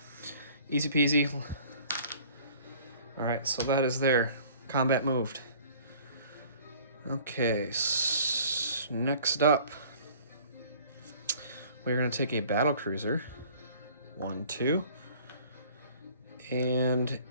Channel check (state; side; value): inverted; both; correlation -0.51